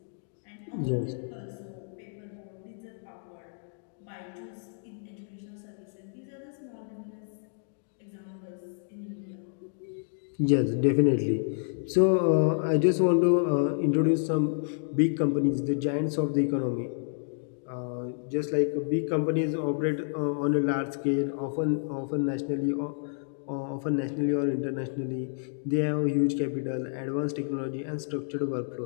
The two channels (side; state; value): right; silent; digital silence